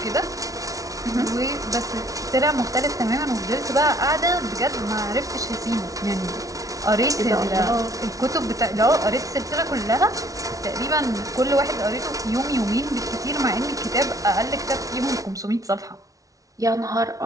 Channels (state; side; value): late; left; 0.17 ms